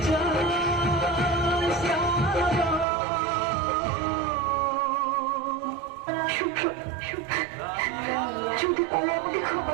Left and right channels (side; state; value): left; drops out; at 2.9 s